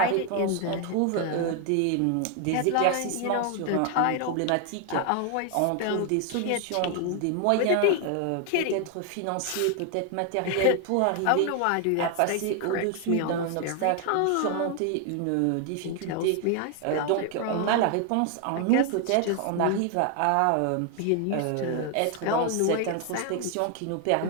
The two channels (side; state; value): both; different; correlation 0.00